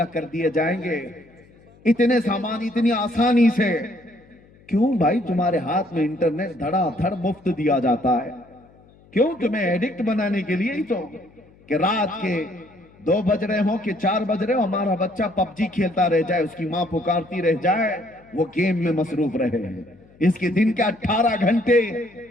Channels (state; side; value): noise; left; hum, 27 dB below the sound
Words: कर दिए जाएंगे, इतने सामान इतनी आसानी से। क्यों भाई? तुम्हारे हाथ में इंटरनेट धड़ाधड़ मुफ्त दिया जाता है। क्यों? तुम्हें एडिक्ट बनाने के लिए ही तो, कि रात के 2 बज रहे हो कि 4 बज रहे हो, हमारा बच्चा पबजी खेलता रह जाए, उसकी माँ पुकारती रह जाए, वो गेम में मसरूफ रहे। इसके दिन के 18 घंटे